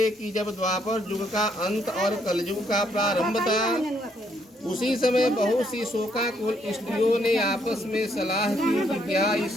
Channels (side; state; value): both; normal; correlation 0.71